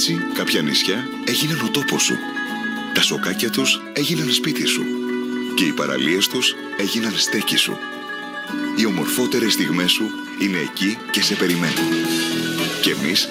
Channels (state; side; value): identical; both; correlation 1.00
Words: κάποια νησιά έγιναν ο τόπος σου. Τα σοκάκια τους έγιναν σπίτι σου. Και οι παραλίες τους έγιναν στέκι σου. Οι ομορφότερες στιγμές σου είναι εκεί και σε περιμένουν. Και εμείς